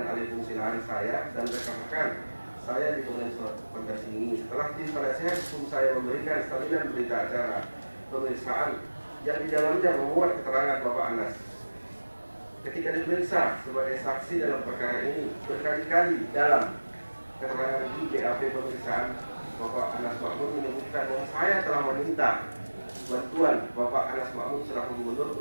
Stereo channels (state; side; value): inverted; both; correlation -1.00